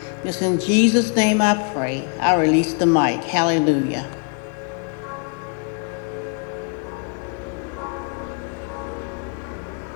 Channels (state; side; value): quieter; right; 37.1 dB